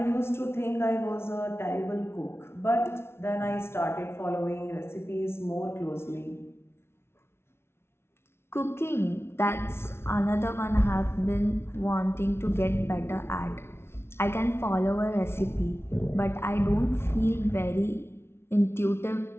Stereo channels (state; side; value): late; right; 0.12 ms